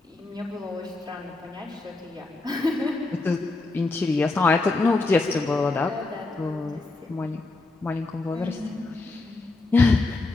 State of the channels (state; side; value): quieter; right; 3.3 dB